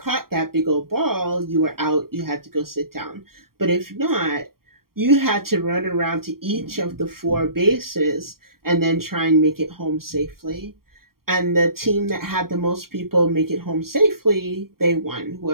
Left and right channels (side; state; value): left; late; 0.93 ms